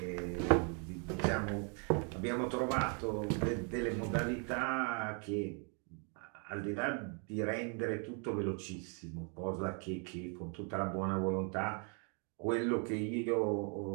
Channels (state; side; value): quieter; left; 39.0 dB